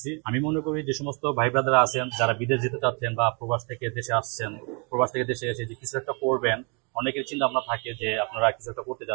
আমি মনে করি যে সমস্ত ভাই ব্রাদার আছেন যারা বিদেশ যেতে চাচ্ছেন বা প্রবাস থেকে দেশে আসছেন, প্রবাস থেকে দেশে এসে যে কিছু একটা করবেন, অনেকের চিন্তা ভাবনা থাকে যে আপনারা কিছু একটা করতে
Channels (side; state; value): left; quieter; 34.3 dB